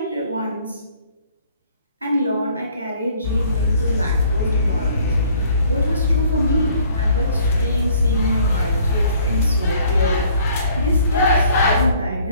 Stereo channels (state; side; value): inverted; both; correlation -0.58